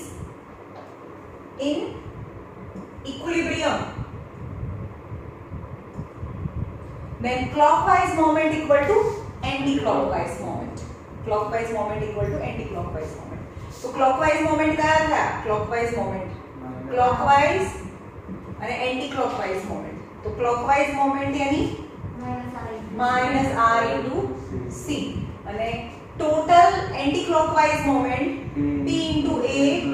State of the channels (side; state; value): both; identical; correlation 1.00